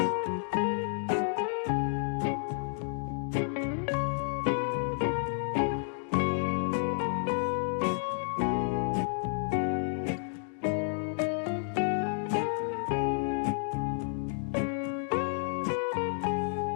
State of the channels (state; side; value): silent; right; 57 dB below the other